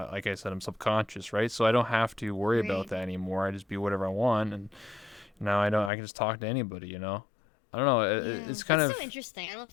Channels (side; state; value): right; drops out; at 5.9 s